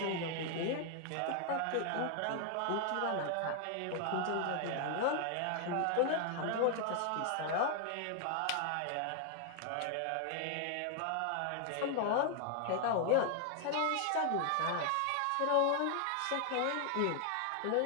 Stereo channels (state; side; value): different; both; correlation 0.00